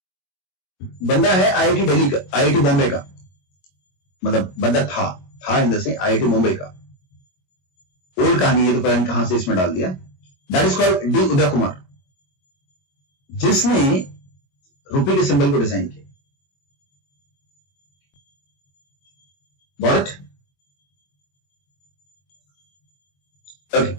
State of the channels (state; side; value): late; right; 22 ms